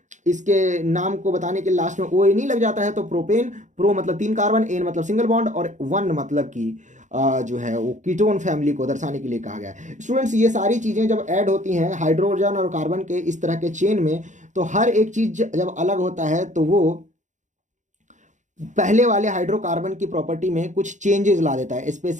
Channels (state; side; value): late; left; 0.35 ms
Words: इसके नाम को बताने के लास्ट में OA नहीं लग जाता है, तो प्रोपेन, प्रो मतलब 3 कार्बन, एन मतलब सिंगल बॉन्ड और 1 मतलब कि जो है वो कीटोन फैमिली को दर्शाने के लिए कहा गया है। स्टूडेंट्स ये सारी चीज़ें जब ऐड होती हैं हाइड्रोजन और कार्बन के इस तरह के चेन में, तो हर एक चीज़ जब अलग होता है तो वो पहले वाले हाइड्रोकार्बन की प्रॉपर्टी में कुछ चेंजेस ला देता है,